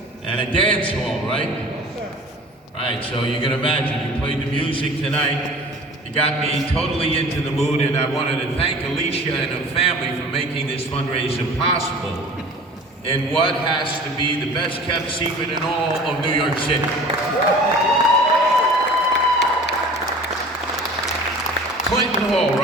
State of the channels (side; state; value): both; normal; correlation 0.43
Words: And a dance hall, right? Yes, sir. Right, so you can imagine, you played the music tonight, you got me totally into the mood, and I wanted to thank Alicia and her family for making this fundraiser possible in what has to be the best kept secret in all of New York City. Clinton Hall,